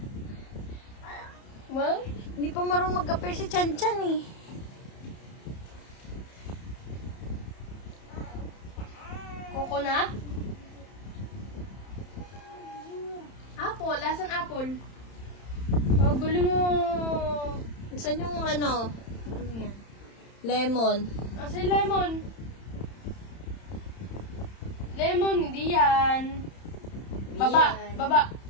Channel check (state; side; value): late; right; 31 ms